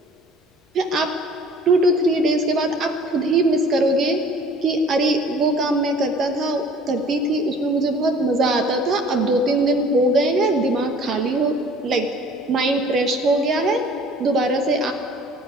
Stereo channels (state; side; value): normal; both; correlation 0.50